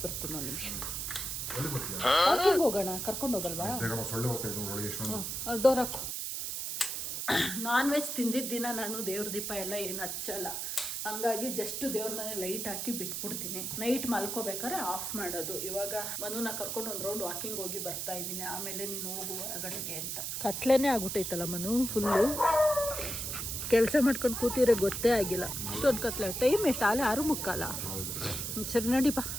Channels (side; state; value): right; noise; hiss, 3 dB below the sound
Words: ಬರ್ತೀನಿ ಒಂದು ನಿಮಿಷ. ಪಾರ್ಕಿಂಗ್ ಹೋಗೋಣ, ಕರ್ಕೊಂಡು ಹೋಗಲ್ವಾ? ಸೊಳ್ಳೆ ಹೋಗ್ತಾ ಡೋರ್ ಹಾಕು. ನಾನ್ ವೆಜ್ ತಿಂದಿದ್ದ ದಿನ ನಾನು ದೇವ್ರ ದೀಪ ಎಲ್ಲ ಏನು ಹಚ್ಚಲ್ಲ, ಹಂಗಾಗಿ ಜಸ್ಟ್ ದೇವ್ರ ಮನೆ ಲೈಟ್ ಹಾಕಿ ಬಿಟ್ಬಿಡ್ತೀನಿ. ನೈಟ್ ಮಲ್ಕೋಬೇಕಾದ್ರೆ ಆಫ್ ಮಾಡೋದು. ಇವಾಗ ಮನುನ ಕರ್ಕೊಂಡು ಒಂದು ರೌಂಡ್ ವಾಕಿಂಗ್ ಹೋಗಿ ಬರ್ತಾ ಇದ್ದೀನಿ, ಆಮೇಲೆ ನೀನು ಹೋಗು ಹೊರಗಡೆಗೆ ಅಂತ. ಕತ್ಲೇನೆ ಆಗ್ಬಿಟ್ಟೈತಲ್ಲ ಮನು, ಫುಲ್ಲು ಕೆಲಸ ಮಾಡ್ಕೊಂಡು ಕೂತಿದ್ರೆ ಗೊತ್ತೇ ಆಗಿಲ್ಲ. ಇಷ್ಟೊಂದು ಕತ್ಲೆ. ಟೈಮ್ ಎಷ್ಟು? ಆಲೆ 6:45. ಸರಿ ನಡಿ ಬಾ